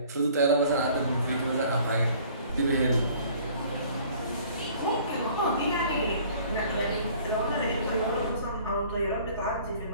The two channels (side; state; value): both; inverted; correlation -0.53